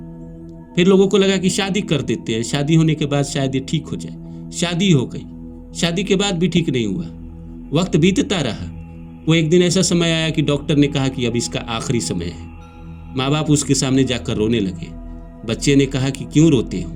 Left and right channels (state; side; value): identical; both; correlation 1.00